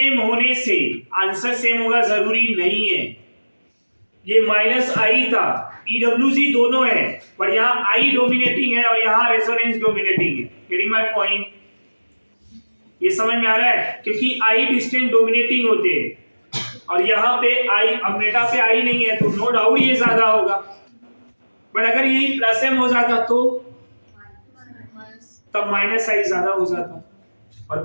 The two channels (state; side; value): inverted; both; correlation -1.00